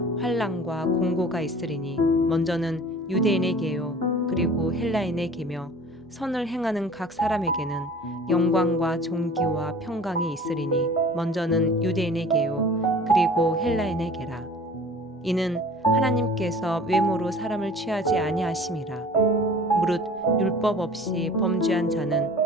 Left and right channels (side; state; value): both; normal; correlation 0.45